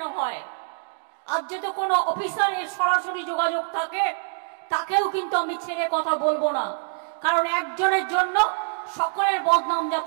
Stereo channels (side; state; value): left; silent; digital silence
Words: হয়। আর যদি কোনো অফিসার এর সরাসরি যোগাযোগ থাকে, তাকেও কিন্তু আমি ছেড়ে কথা বলবো না, কারণ একজনের জন্য সকলের বদনাম